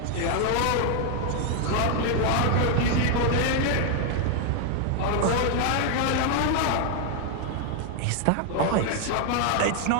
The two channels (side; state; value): both; different; correlation 0.01